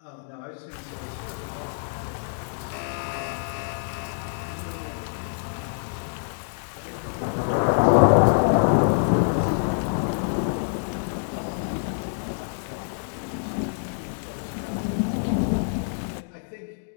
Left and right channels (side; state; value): right; silent; digital silence